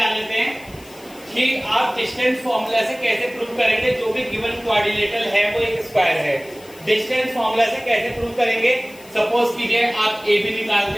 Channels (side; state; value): left; noise; hiss, 23 dB below the sound